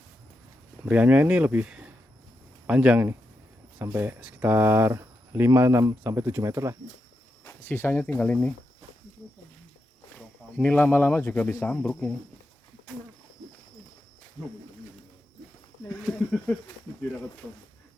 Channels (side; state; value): both; normal; correlation 0.86